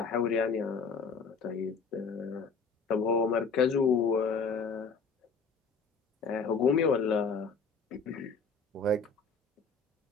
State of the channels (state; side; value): quieter; right; 4.9 dB